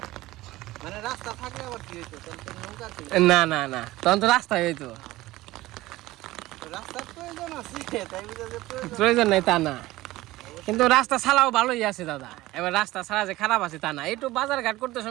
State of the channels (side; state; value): left; quieter; 17.8 dB